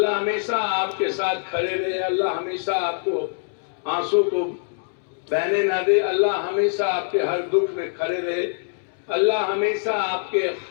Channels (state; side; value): silent; right; 63 dB below the other